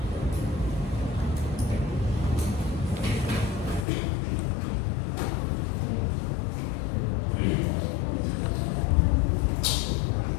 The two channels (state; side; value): drops out; right; at 3.9 s